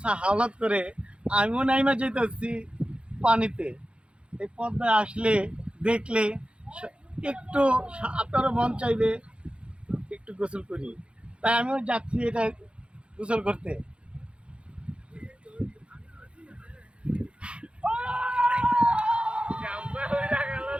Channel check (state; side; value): late; left; 0.058 ms